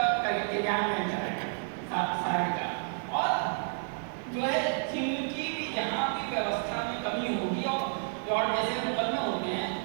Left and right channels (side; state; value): left; silent; 57 dB below the other